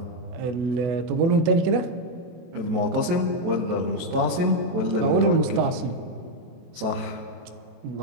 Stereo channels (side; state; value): left; late; 23 ms